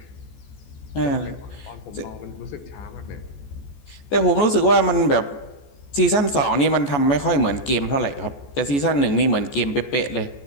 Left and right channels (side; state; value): right; late; 14 ms